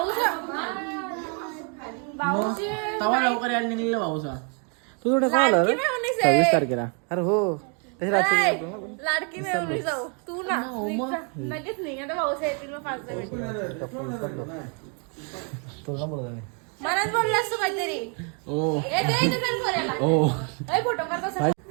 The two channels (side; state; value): left; quieter; 38.4 dB